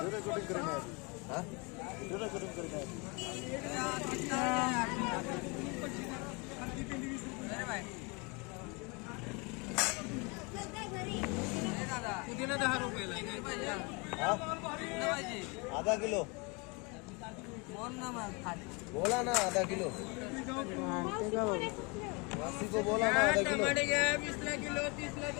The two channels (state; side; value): quieter; right; 29.8 dB